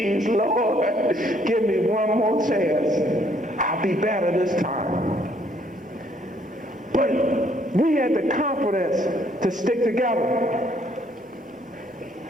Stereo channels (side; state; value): both; normal; correlation 0.66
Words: Lord, give me one more chance. I'll be better this time. But we had the confidence to stick together